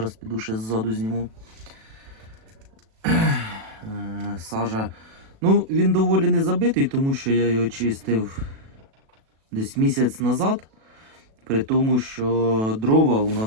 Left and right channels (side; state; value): left; late; 37 ms